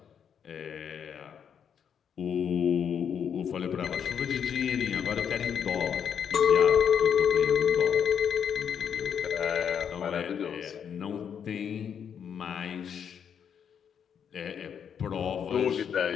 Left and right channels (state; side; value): quieter; right; 7.9 dB